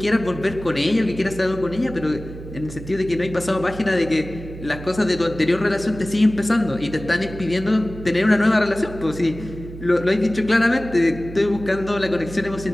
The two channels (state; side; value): noise; right; hum, 13 dB below the sound